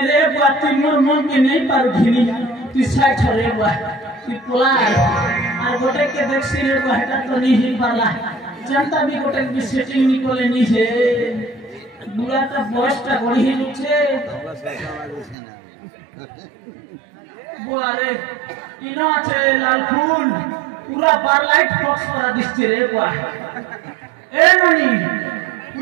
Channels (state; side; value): drops out; left; at 15.4 s